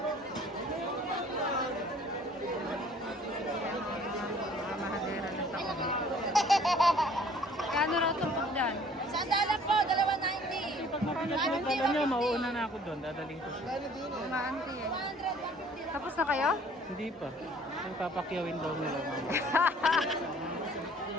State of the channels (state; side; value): normal; both; correlation 0.54